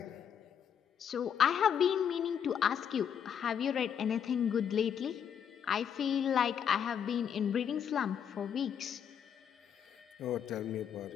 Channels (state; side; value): quieter; right; 8.2 dB